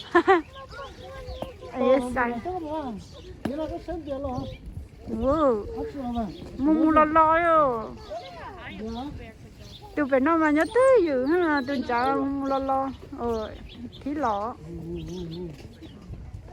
ấy sai thế là cái sáng tiền rồi wow hấp dẫn mà mua lò yo tôi phải nói mà nhớ tới dữ ha tôi chả mua lò thì lò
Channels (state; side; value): identical; both; correlation 1.00